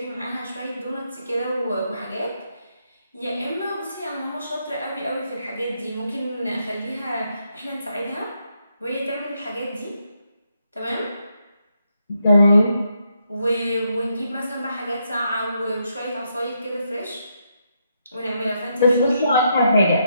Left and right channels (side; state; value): both; inverted; correlation -0.79